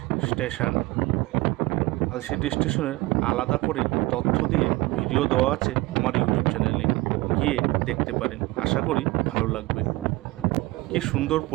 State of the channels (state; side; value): quieter; left; 20.7 dB